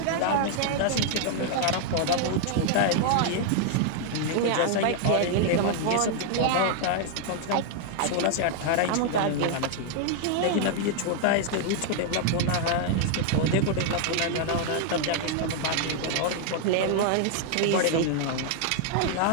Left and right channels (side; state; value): both; different; correlation 0.00